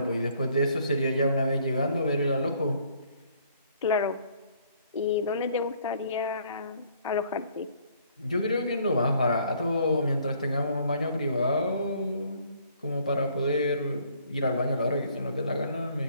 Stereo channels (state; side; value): inverted; both; correlation -0.62